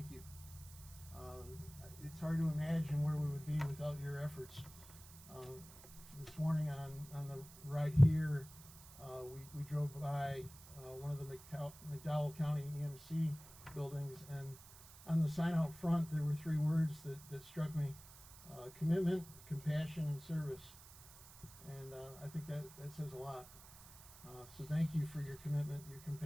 you. It's hard to imagine where we would be without your efforts. This morning on the ride here, we drove by one of the McDowell County EMC buildings, and on the sign out front there were three words that struck me: commitment, compassion, and service. And I think that says a lot. So thank you for your commitment, your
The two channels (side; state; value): right; noise; hiss, 19 dB below the sound